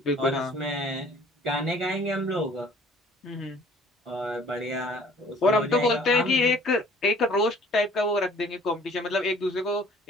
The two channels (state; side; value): normal; both; correlation 0.53